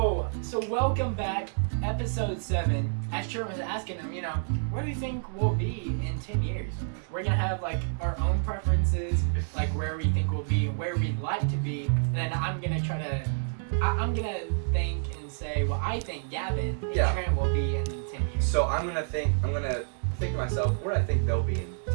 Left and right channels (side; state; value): left; silent; digital silence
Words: so welcome back, episode 7. As Trent was asking him, where do you think we'll be in 10 years? We're gonna have like our own preferences, like where we think we'll be, where we'd like to be, and then I'm gonna think and say what I think Gavin and Trent will be in 10 years. So I'm gonna think to myself where I think they'll be in 10